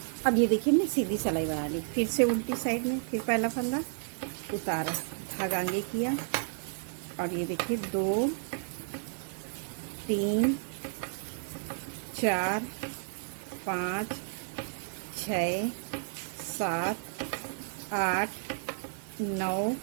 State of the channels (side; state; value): left; silent; digital silence